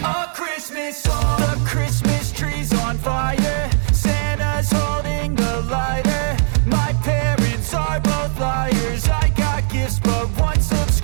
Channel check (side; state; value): left; silent; digital silence